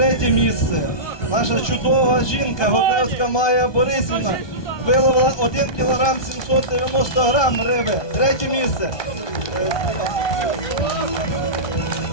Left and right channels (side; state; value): right; late; 1.2 ms